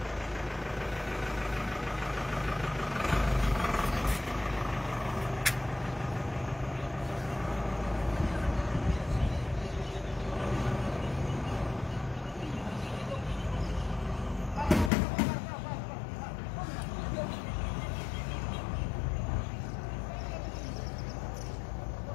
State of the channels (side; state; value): right; drops out; at 14.9 s